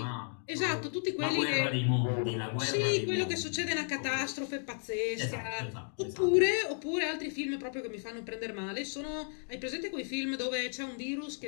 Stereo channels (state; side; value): silent; right; 55 dB below the other